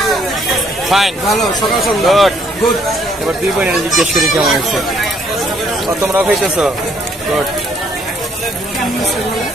ফাইন, ভালো, সকাল গুড গুড। এবার দুই বোনের জিজ্ঞেস করি কেমন হয়েছে। ও তোমরাও খাইতেছো, গুড।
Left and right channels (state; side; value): normal; both; correlation 0.66